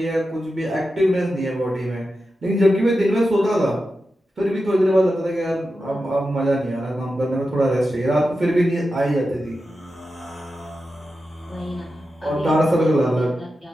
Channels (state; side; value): normal; both; correlation 0.91